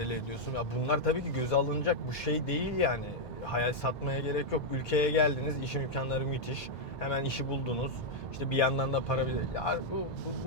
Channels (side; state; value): both; normal; correlation -0.03